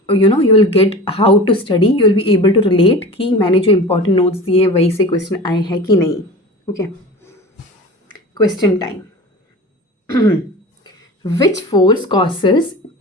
you will get how to study, you will be able to relate कि मैंने जो इंपॉर्टेंट नोट्स दिए वही से क्वेश्चन आए हैं कि नहीं। Okay, question time. Which force causes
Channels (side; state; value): both; normal; correlation 0.35